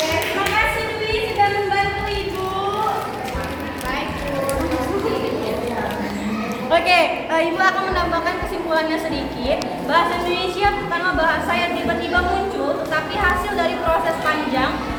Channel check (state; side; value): identical; both; correlation 1.00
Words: terima kasih Dwi sudah membantu ibu. Baik, Bu. Oke, ibu akan menambahkan kesimpulannya sedikit. Bahasa Indonesia bukanlah bahasa yang tiba-tiba muncul, tetapi hasil dari proses panjang